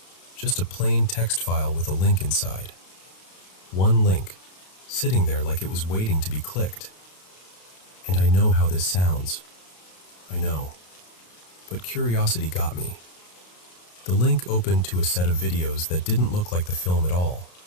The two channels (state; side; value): late; right; 32 ms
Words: Just a plain text file with a link inside. One link, sitting there like it was waiting to be clicked. And I know how this sounds. I know. But curiosity got me. The link opened to a set of videos that didn't look like the film at all.